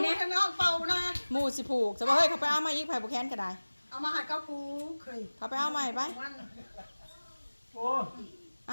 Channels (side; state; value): both; inverted; correlation -1.00